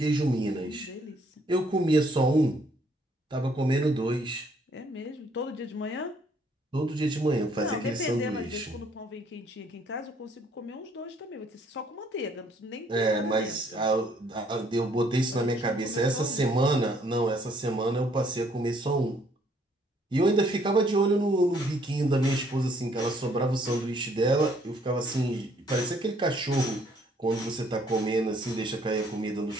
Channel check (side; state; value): both; normal; correlation 0.65